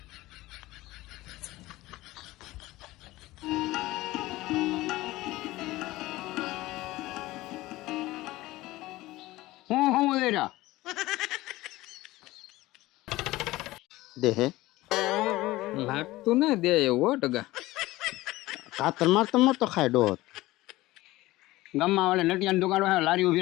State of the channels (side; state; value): right; quieter; 18.2 dB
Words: હું લઈ રહ્યા દે હે લાગતું ને દે એવું હો ટગા કાતર મારતો ખાય ડોત ગામમાં વાળે નટિયાની દુકાન હોય લારી